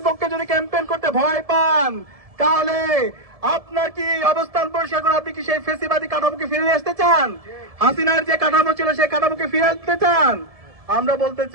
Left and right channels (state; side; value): late; left; 1.7 ms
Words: পক্ষে যদি ক্যাম্পেইন করতে ভয় পান, তাহলে আপনার কি অবস্থান পরিষ্কার করে আপনি কি সেই ফেসিবাদী কাঠামোকে ফিরে আসতে চান? হাসিনার যে কাঠামো ছিল সেই কাঠামোকে ফিরে আসতে চান? আমরা বলতে